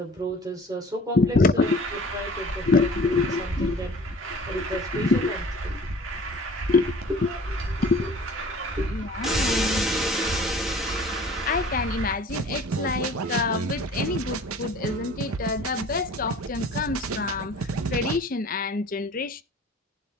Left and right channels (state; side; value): normal; both; correlation 0.46